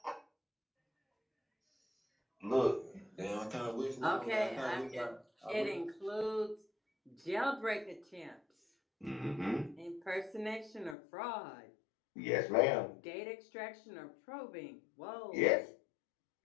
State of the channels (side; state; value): right; drops out; at 11.0 s